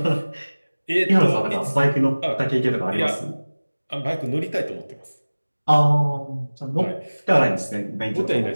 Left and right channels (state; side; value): inverted; both; correlation -1.00